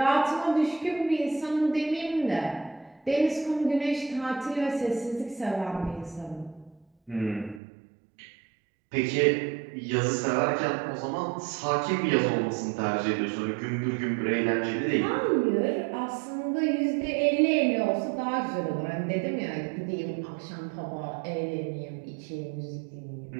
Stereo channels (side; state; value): left; drops out; at 7.6 s